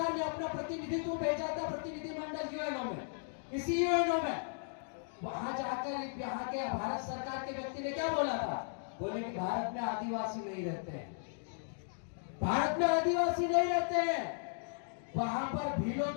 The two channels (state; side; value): silent; right; digital silence